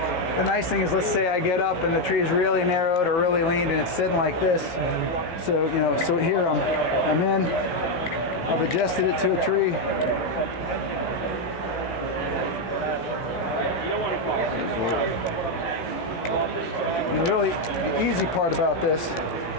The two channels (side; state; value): right; late; 17 ms